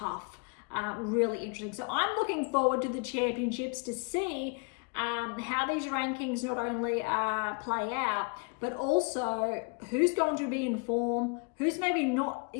Really interesting. So I'm looking forward to the championships to see how these rankings not only play out, but also who's going to be in form, who's maybe not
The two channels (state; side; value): quieter; right; 33.4 dB